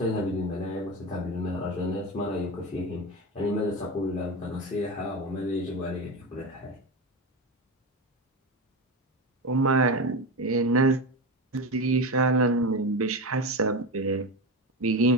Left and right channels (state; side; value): normal; both; correlation 0.20